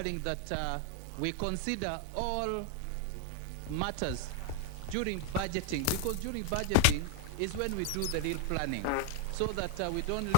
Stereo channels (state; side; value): different; both; correlation 0.00